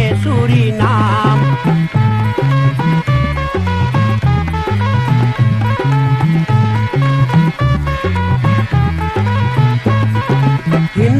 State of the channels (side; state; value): both; identical; correlation 1.00